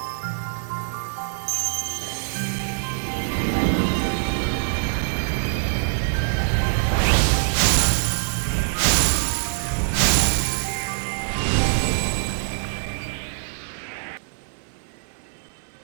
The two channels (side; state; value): left; silent; 63 dB below the other